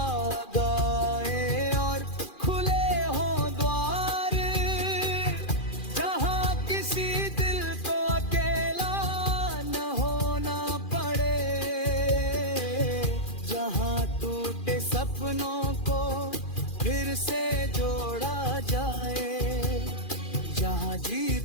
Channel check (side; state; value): right; late; 2.4 ms